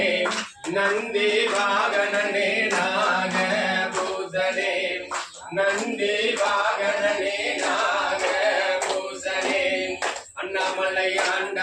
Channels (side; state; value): both; identical; correlation 1.00